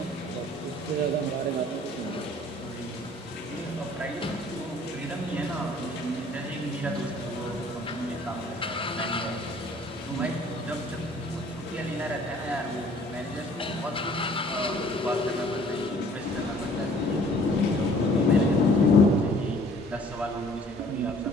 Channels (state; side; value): normal; both; correlation 0.55